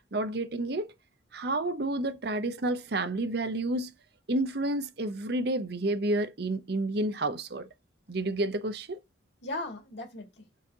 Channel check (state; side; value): normal; both; correlation 0.30